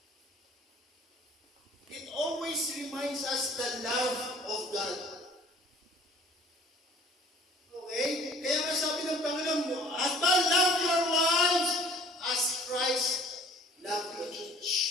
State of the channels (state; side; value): normal; both; correlation 0.52